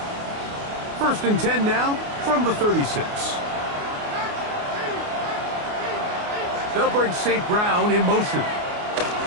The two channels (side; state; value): left; late; 29 ms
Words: First and 10 now from the 36. They'll bring St. Brown in motion.